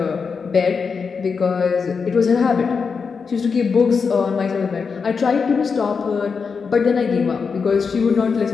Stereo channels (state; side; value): quieter; right; 5.4 dB